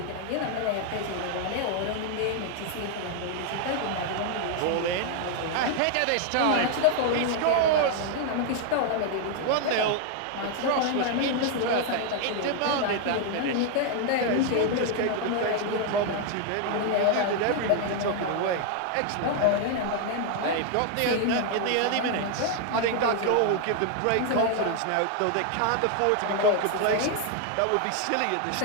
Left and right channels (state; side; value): different; both; correlation 0.00